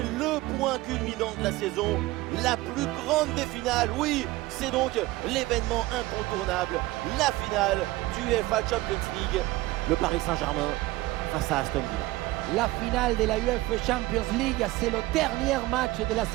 le point culminant de la saison, la plus grande des finales. Oui, c'est donc l'événement incontournable, la finale du UEFA Champions League. Le Paris Saint-Germain face à Aston Villa. La finale de la UEFA Champions League, c'est le dernier match de la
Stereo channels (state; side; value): quieter; left; 18.8 dB